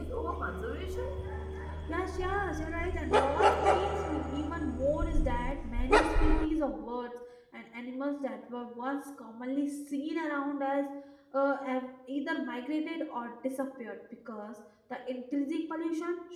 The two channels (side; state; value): both; identical; correlation 1.00